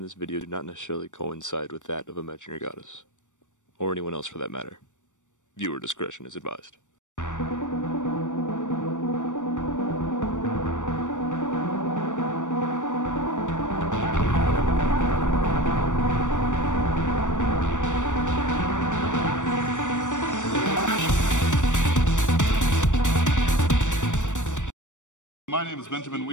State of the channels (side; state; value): right; late; 0.85 ms